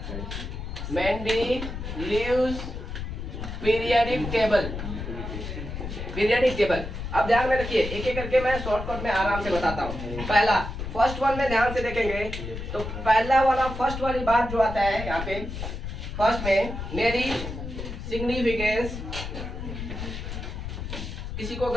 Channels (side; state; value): left; noise; rumble, 7 dB below the sound